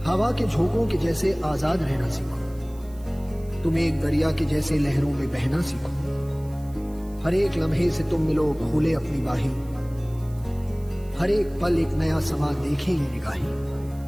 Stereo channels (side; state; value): right; noise; hiss, 26 dB below the sound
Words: हवा के झोंकों के जैसे आजाद रहना सीखो, तुम एक दरिया के जैसे लहरों में बहना सीखो। हर एक लम्हे से तुम मिलो खोले अपनी बाहें, हर एक पल एक नया समा देखें ये निगाहें।